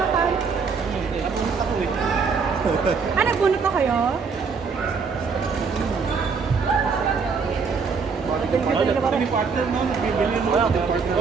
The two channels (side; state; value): left; quieter; 5.3 dB